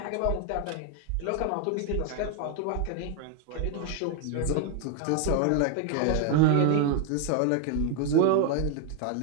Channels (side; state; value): both; different; correlation 0.01